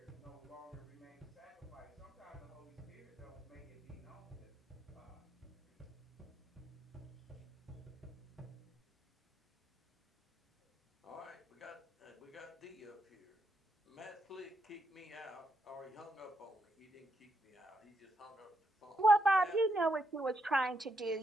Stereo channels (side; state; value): both; normal; correlation 0.79